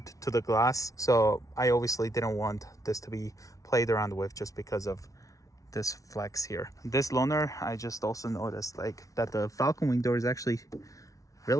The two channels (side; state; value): right; late; 0.17 ms